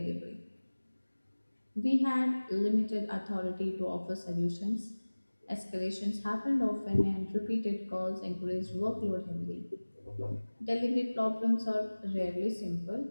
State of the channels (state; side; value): inverted; both; correlation -1.00